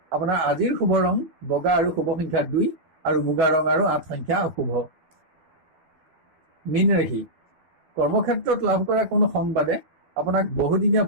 আপোনাৰ আজিৰ শুভ ৰং বগা আৰু শুভ সংখ্যা 2 আৰু মুগা ৰং আৰু 8 সংখ্যা অশুভ। মীন ৰাশি, কৰ্মক্ষেত্ৰত লাভ কৰা কোনো সংবাদে আপোনাক বহুদিনীয়া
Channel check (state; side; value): late; left; 12 ms